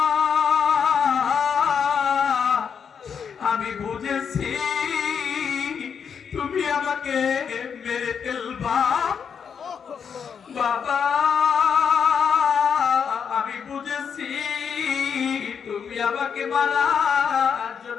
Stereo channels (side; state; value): right; quieter; 6.9 dB